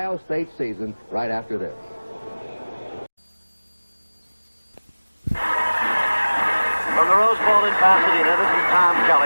State season right after this. From the Rose Bowl in Pasadena, this is Tom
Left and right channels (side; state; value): both; inverted; correlation -1.00